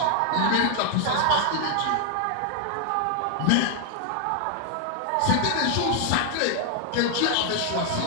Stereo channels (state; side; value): different; both; correlation 0.00